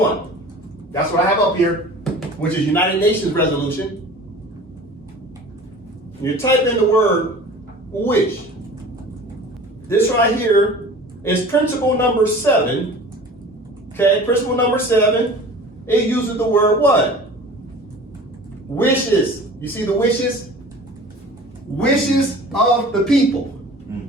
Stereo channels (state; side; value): normal; both; correlation 0.42